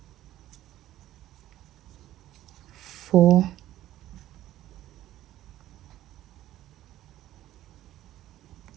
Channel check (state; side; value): quieter; left; 13.9 dB